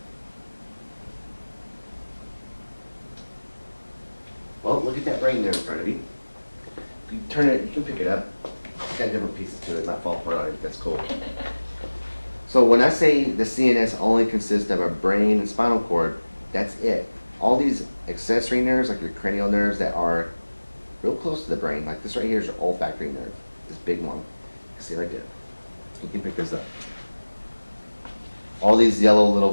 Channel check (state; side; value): inverted; both; correlation -1.00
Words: Well, look at that brain there in front of you. If you turn it, you can pick it up. It's got different pieces to it, not fall apart on it. That's cool. So when I say the CNS only consists of a brain and spinal cord, that's it. All these accessory nerves, like your cranial nerves that are real close to the brain, like this right here is your olfactory nerve, this big one. See right there. You can pick this up. All these yellow little